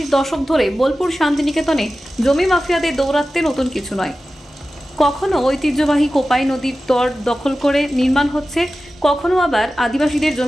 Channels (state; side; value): normal; both; correlation 0.95